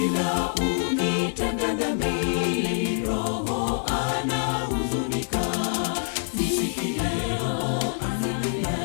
ukitenda dhambi, Roho anahuzunika. Sikia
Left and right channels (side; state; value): right; silent; digital silence